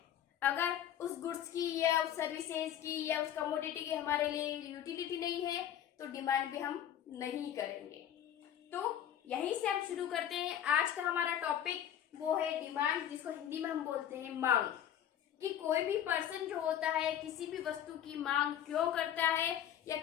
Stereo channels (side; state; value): right; quieter; 10.4 dB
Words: अगर उस गुड्स की या उस सर्विसेज की या उस कमोडिटी की हमारे लिए यूटिलिटी नहीं है तो डिमांड भी हम नहीं करेंगे। तो यहीं से हम शुरू करते हैं। आज का हमारा टॉपिक वो है डिमांड, जिसको हिंदी में हम बोलते हैं मांग। कि कोई भी पर्सन जो होता है किसी भी वस्तु की मांग क्यों करता है, या